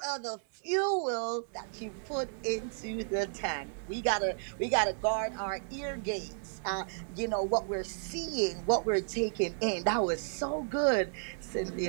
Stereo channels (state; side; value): silent; left; 56 dB below the other